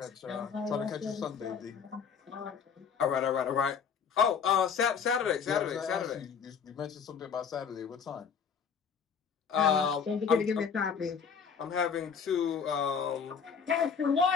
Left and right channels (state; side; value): quieter; right; 6.6 dB